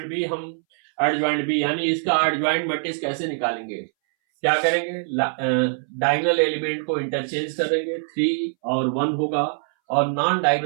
बी यानी इसका एडजॉइंट मैट्रिक्स कैसे निकालेंगे, क्या करेंगे, डायगोनल एलिमेंट को इंटरचेंज करेंगे, 3 और 1 होगा और नॉन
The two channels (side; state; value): left; silent; 62 dB below the other